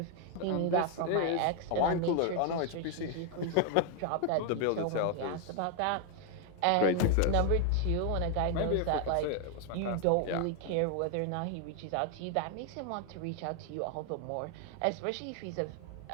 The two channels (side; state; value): both; different; correlation 0.00